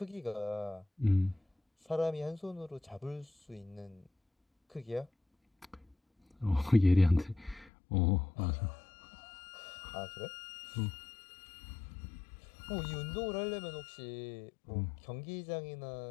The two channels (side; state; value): right; drops out; at 7.7 s